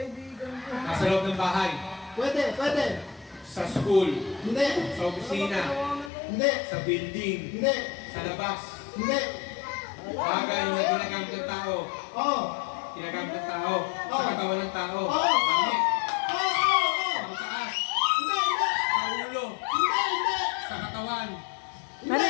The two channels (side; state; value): right; drops out; at 6.1 s